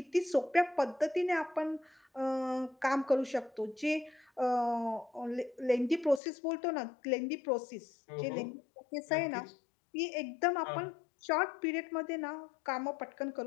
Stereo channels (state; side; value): drops out; right; at 6.2 s